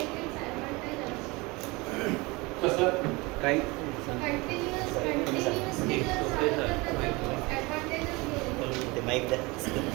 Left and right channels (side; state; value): left; quieter; 24.7 dB